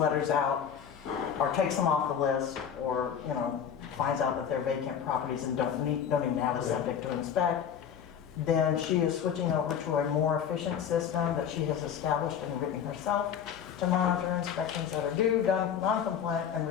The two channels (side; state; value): right; quieter; 8.2 dB